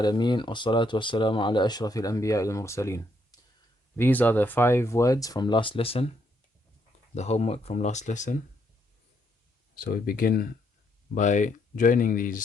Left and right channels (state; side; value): normal; both; correlation 0.74